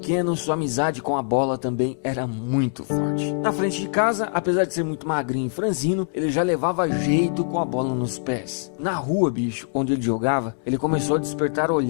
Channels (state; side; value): silent; right; 63 dB below the other